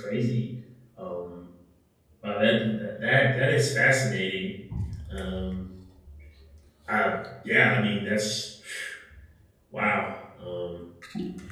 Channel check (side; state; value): both; identical; correlation 1.00